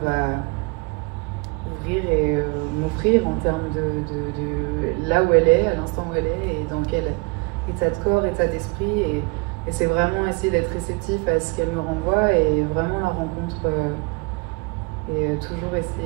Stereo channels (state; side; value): quieter; left; 28.7 dB